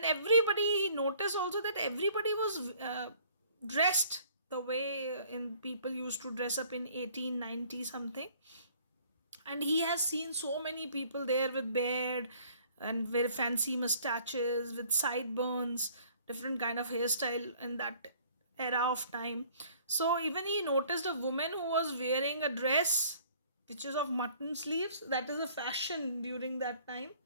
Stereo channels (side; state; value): both; inverted; correlation -0.56